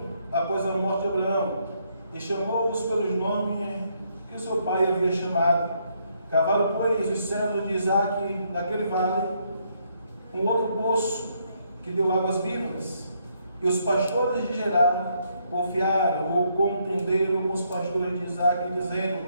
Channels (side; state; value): both; inverted; correlation -0.73